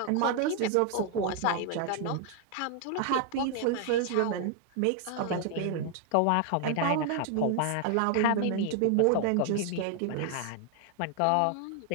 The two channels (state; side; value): different; both; correlation 0.00